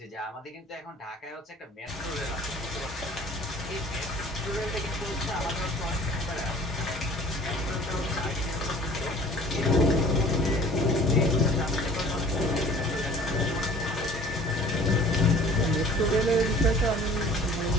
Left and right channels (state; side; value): normal; both; correlation 0.49